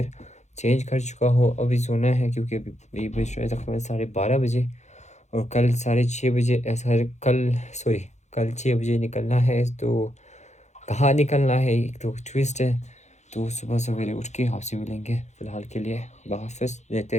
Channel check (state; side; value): late; right; 0.33 ms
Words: चेंज कर चुका हो, अभी सोना है क्योंकि अभी बज रहे तकरीबन 12:30 बजे और कल 6:30 बजे कल 6 बजे निकलना है। तो कहाँ निकलना है एक तो ट्विस्ट है। तो सुबह सवेरे उठ के आपसे मिलेंगे। फ़िलहाल के लिए हाफ़िज़, लेते